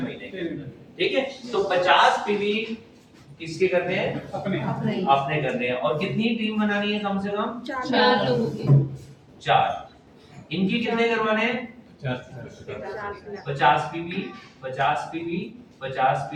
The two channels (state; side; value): identical; both; correlation 1.00